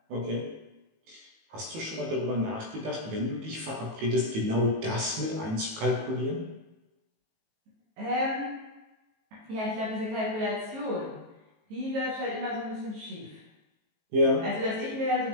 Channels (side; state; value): left; late; 18 ms